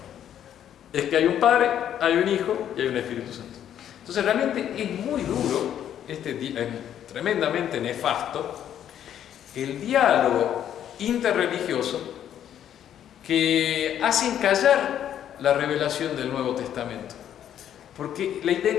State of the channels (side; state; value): right; quieter; 10.2 dB